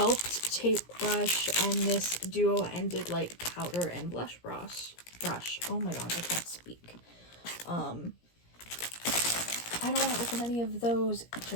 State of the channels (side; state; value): right; late; 17 ms